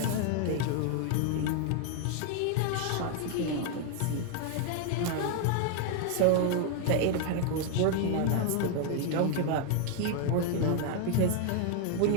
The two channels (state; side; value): different; both; correlation 0.00